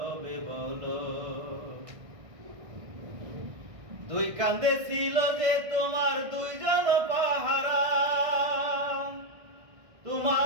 বলো। দুই কান্দে ছিল যে তোমার দুইজন পাহারা,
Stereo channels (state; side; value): late; left; 1.6 ms